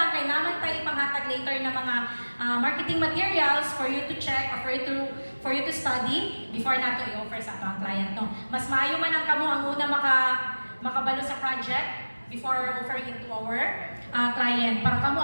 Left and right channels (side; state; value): both; inverted; correlation -1.00